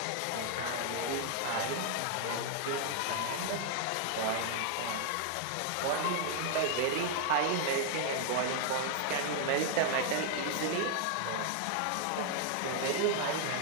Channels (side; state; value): both; different; correlation 0.00